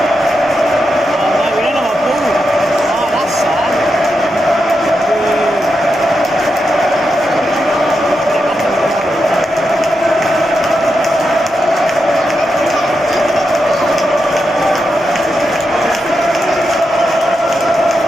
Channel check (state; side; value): normal; both; correlation 0.86